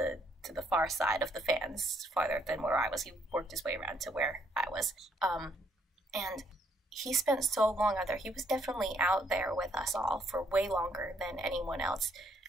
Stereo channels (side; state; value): both; normal; correlation 0.69